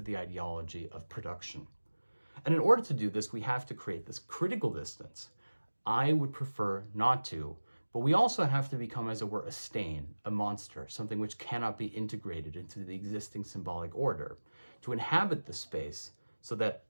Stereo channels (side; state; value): both; inverted; correlation -1.00